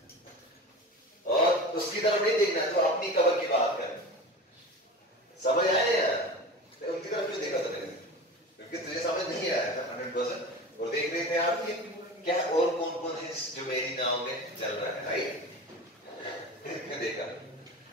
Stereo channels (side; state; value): both; normal; correlation 0.33